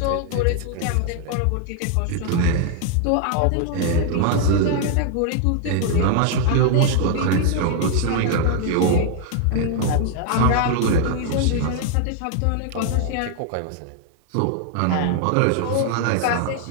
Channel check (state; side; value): different; both; correlation 0.00